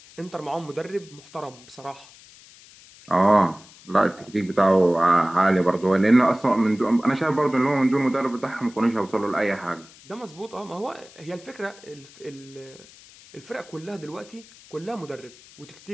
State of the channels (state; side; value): noise; left; hiss, 23 dB below the sound